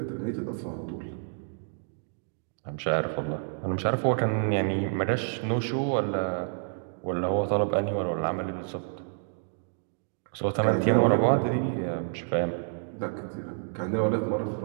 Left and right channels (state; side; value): silent; left; digital silence